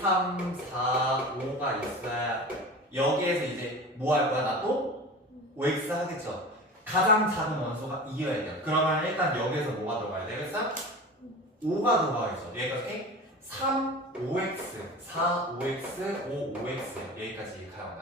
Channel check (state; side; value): normal; both; correlation 0.34